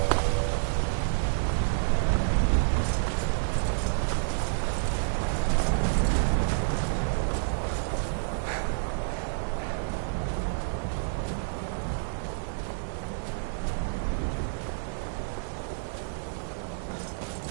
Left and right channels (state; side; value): silent; left; 55 dB below the other